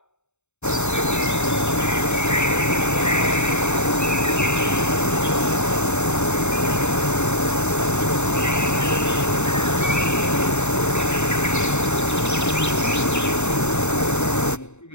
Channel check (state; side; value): late; right; 0.82 ms